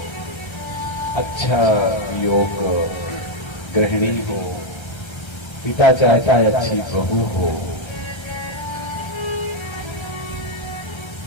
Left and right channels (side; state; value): right; late; 1.3 ms